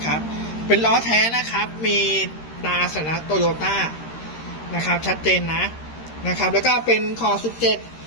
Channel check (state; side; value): late; right; 13 ms